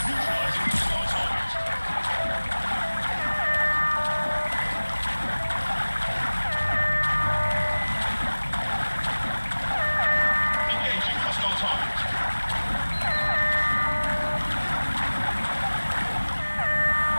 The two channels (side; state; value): both; inverted; correlation -1.00